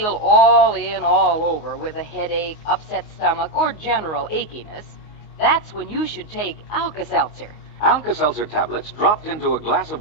all in, all over with a headache, upset stomach, or general achiness, that's when you should take Alka-Seltzer. Alka-Seltzer tablets dropped into a glass of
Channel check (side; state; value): right; late; 19 ms